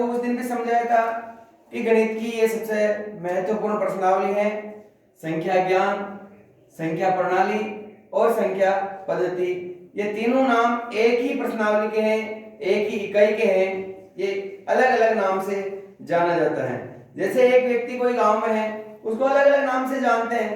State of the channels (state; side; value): identical; both; correlation 1.00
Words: उस दिन भी समझाया था कि गणित की ये सबसे महत्वपूर्ण प्रश्नावली है संख्या ज्ञान, संख्या प्रणाली और संख्या पद्धति। ये तीनों नाम एक ही प्रश्नावली के हैं, एक ही इकाई के हैं, ये अलग अलग नाम से जाना जाता है। जैसे एक व्यक्ति कोई गांव में है, उसको अलग अलग नाम से जानते